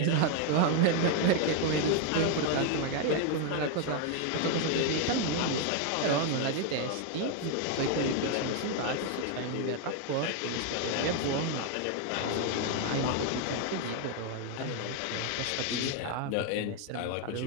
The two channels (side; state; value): both; different; correlation 0.01